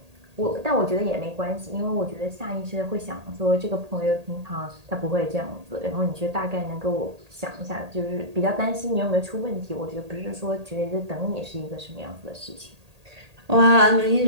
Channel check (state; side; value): late; left; 1.8 ms